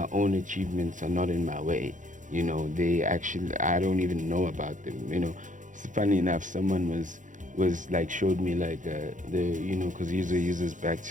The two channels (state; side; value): late; left; 0.37 ms